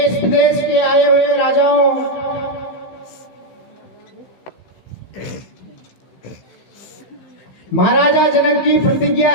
विदेश के आए हुए राजाओं, महाराजा जनक की प्रतिज्ञा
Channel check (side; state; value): right; late; 15 ms